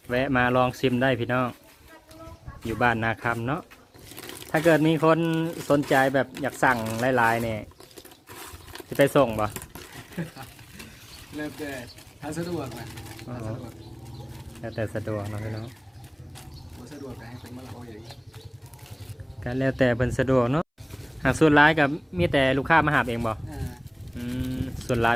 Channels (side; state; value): both; identical; correlation 1.00